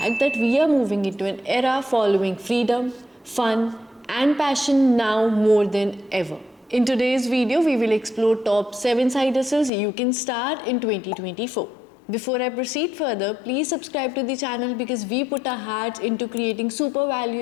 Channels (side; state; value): right; drops out; at 9.7 s